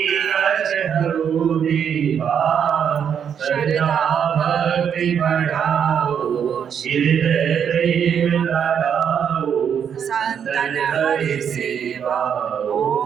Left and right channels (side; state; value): left; quieter; 8.0 dB